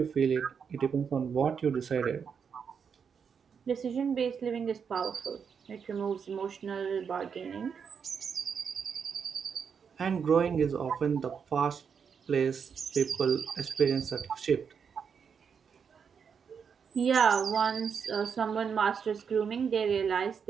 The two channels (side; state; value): left; quieter; 6.6 dB